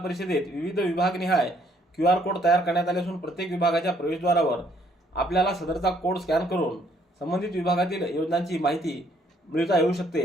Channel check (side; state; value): both; normal; correlation 0.66